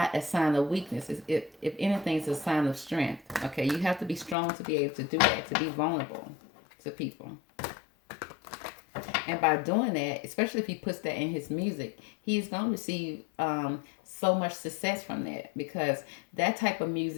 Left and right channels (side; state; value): right; drops out; at 4.4 s